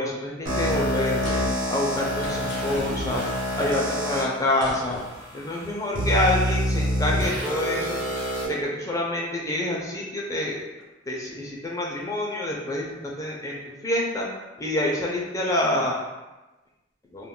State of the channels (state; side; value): normal; both; correlation 0.33